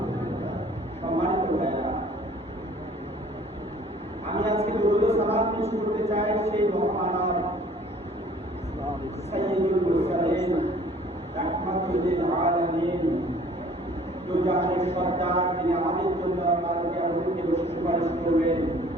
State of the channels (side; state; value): both; normal; correlation 0.53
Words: সম্মানিত ভাইরা, আমি আজকে দুরূদ ও সালাত পেশ করতে চাই সেই মহামানব সাইয়্যিদুল মুরসালিন রাহমাতুল লিল আলামিন, তো জাহানের সরদার, তিনি আমাদের জন্য আমাদেরকে আমাদেরকে সুপারিশ করবেন